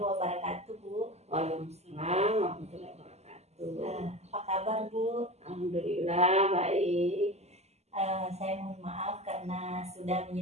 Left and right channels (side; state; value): left; late; 0.31 ms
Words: Bu. Waalaikumsalam warahmatullahi wabarakatuh. Apa kabar, Bu? Alhamdulillah baik. Saya mohon maaf karena sudah